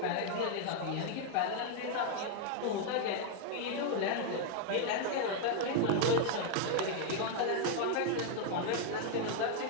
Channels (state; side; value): different; both; correlation 0.00